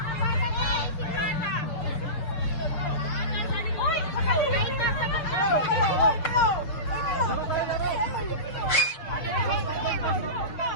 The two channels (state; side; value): late; right; 6.4 ms